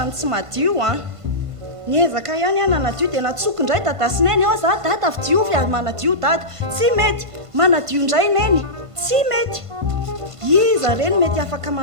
ny tsy madio niezaka ihany nanadio dia natsoky indray dadasineny ao za dada fi diovy manadio dada tsy mety manadio indray neny tsy mety iza reny mety afaka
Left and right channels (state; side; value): late; left; 1.5 ms